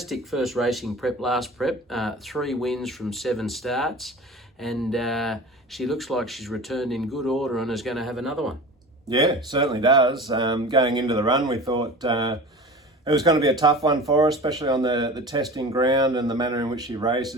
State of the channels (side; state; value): both; normal; correlation 0.35